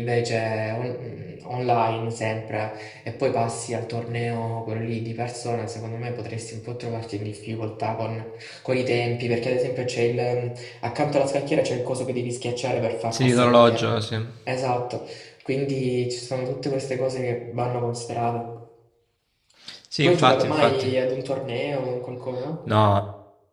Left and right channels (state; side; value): identical; both; correlation 1.00